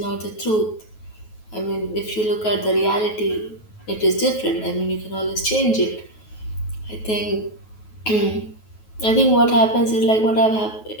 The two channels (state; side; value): late; right; 9.3 ms